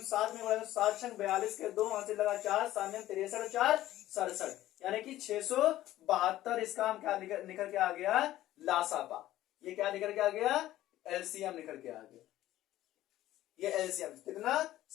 7 में गुणा करें, 7 छंग 42 के 2, वहां से लगा 4, 7 63, 4 67, यानी कि 672, इसका हम क्या निकल के आ गया, लासापा, ये क्या निकल के आ गया, एलसीएम निकल के आ गया, ये एलसीएम कितना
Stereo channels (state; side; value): quieter; right; 14.5 dB